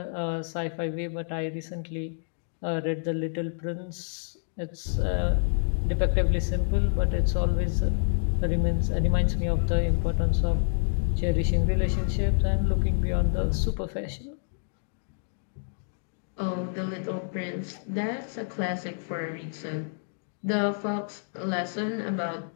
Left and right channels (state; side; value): silent; right; digital silence